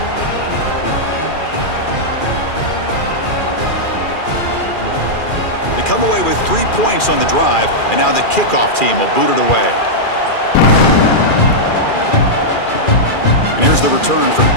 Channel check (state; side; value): late; right; 2.4 ms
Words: Come away with 3 points on the drive, and now the kickoff team will boot it away. And here's the return from